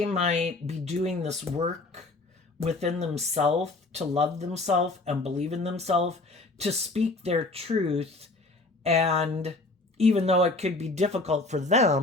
might be doing this work within themselves to love themselves and believe in themselves, to speak their truth. And even though it could be difficult for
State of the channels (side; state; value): right; quieter; 3.2 dB